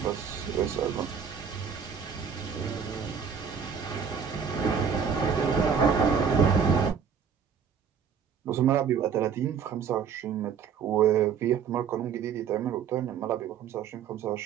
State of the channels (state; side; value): quieter; left; 7.0 dB